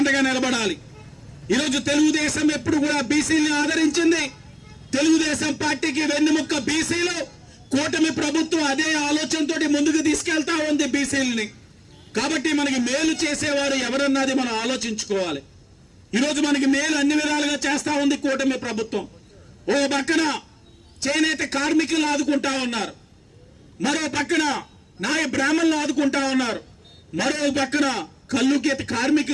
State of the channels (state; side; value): identical; both; correlation 1.00